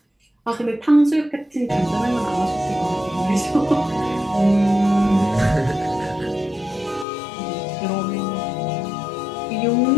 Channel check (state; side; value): drops out; right; at 7.1 s